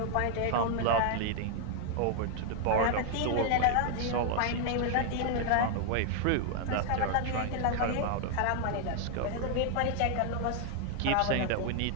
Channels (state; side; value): different; both; correlation 0.00